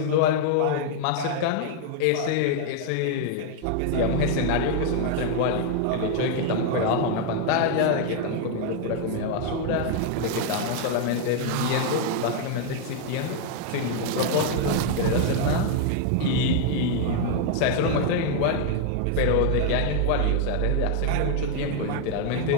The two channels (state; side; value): different; both; correlation 0.00